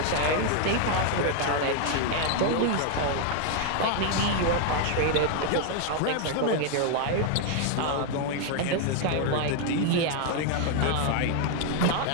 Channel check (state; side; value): different; both; correlation 0.00